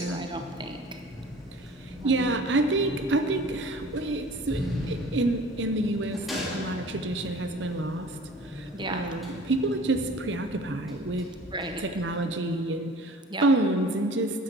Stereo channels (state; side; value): normal; both; correlation 0.45